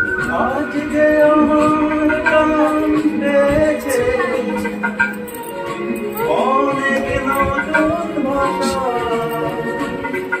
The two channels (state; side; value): identical; both; correlation 1.00